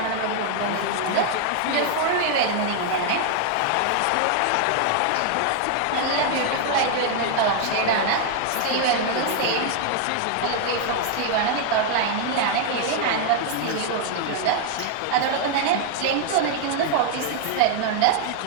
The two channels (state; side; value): different; both; correlation 0.00